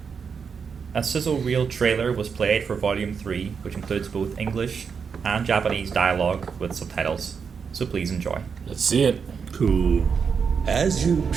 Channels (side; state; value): left; quieter; 6.1 dB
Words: A sizzle reel trailer was played for Volume 3, which includes both English and Japanese dialogue with subtitles. So please enjoy. Let's see it. Cool. As you